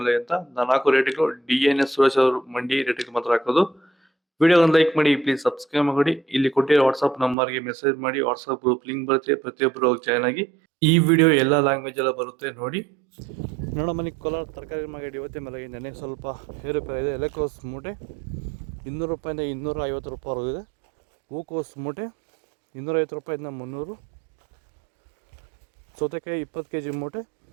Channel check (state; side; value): drops out; left; at 7.4 s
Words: ಅಂತ ನಾನು ಹಾಕೋ ರೇಟ್ಗಳು DNS ಸುರೇಶ್ ಅವರು ಮಂಡಿ ರೇಟ್ಗೆ ಮಾತ್ರ ಹಾಕೋದು. ವಿಡಿಯೋ ಒಂದು ಲೈಕ್ ಮಾಡಿ, ಪ್ಲೀಸ್ ಸಬ್ಸ್ಕ್ರೈಬ್ ಮಾಡಿ. ಇಲ್ಲಿ ಕೊಟ್ಟಿರೋ ವಾಟ್ಸ್ಆಪ್ ನಂಬರ್ಗೆ ಮೆಸೇಜ್ ಮಾಡಿ, ವಾಟ್ಸ್ಆಪ್ ಗ್ರೂಪ್ ಲಿಂಕ್ ಬರುತ್ತೆ, ಪ್ರತಿಯೊಬ್ಬರು ಜಾಯ್ನ್ ಆಗಿ. ಈ ವಿಡಿಯೋ ಎಲ್ಲ ಲ್ಯಾಂಗ್ವೇಜ್ ಎಲ್ಲ ಬರುತ್ತೆ ನೋಡಿ. ನೋಡೋ ಮನಿ ಕೋಲಾರ ತರಕಾರಿ ಮಂಡಿ ಯೋಚನೆ ಮೇಲೆ ನನಗೆ ಸ್ವಲ್ಪ ಏರುಪೇರು ಇದೆ. ಎಲೆಕೋಸ್ ಮೂಟೆ 200 ರೂಪಾಯಿಂದ 250 ರೂಪಾಯಿ ಇದೆ. ಹೂಕೋಸ್ ಮೂಟೆ 250 ರೂಪಾಯಿಂದ 300. ಸೌತೆಕಾಯಿ 20 kg ಮೂಟೆ